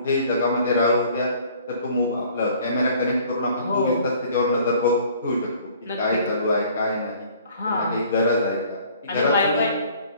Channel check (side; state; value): both; inverted; correlation -0.54